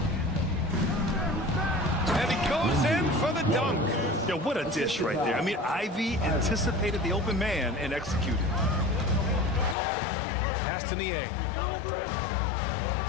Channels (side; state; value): right; drops out; at 9.8 s